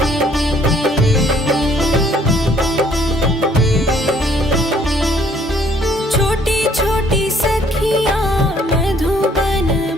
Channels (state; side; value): normal; both; correlation 0.62